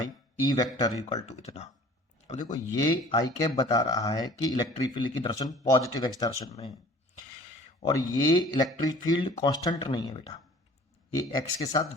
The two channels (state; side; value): normal; both; correlation 0.48